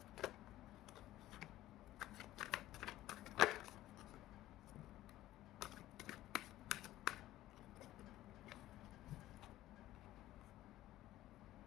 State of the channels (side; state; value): right; quieter; 15.3 dB